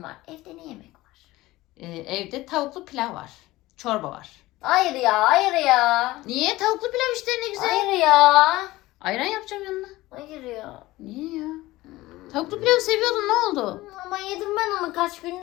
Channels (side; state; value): right; quieter; 18.3 dB